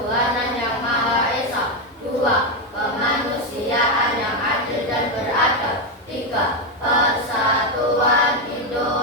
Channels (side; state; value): both; normal; correlation 0.07